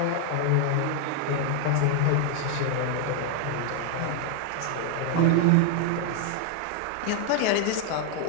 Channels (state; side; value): different; both; correlation 0.00